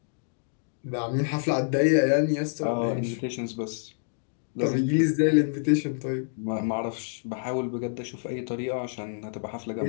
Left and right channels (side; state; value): right; silent; digital silence